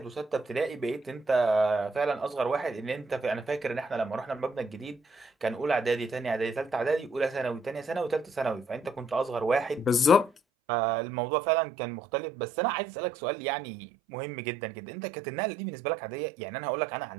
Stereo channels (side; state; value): left; drops out; at 10.4 s